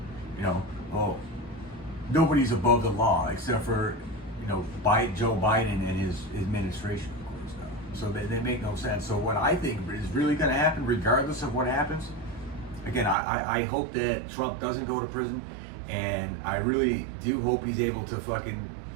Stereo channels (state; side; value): drops out; left; at 13.2 s